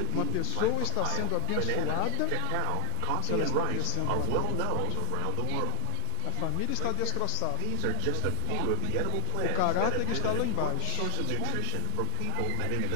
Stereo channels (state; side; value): different; both; correlation 0.01